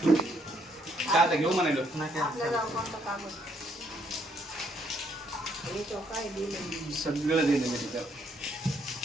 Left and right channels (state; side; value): normal; both; correlation 0.71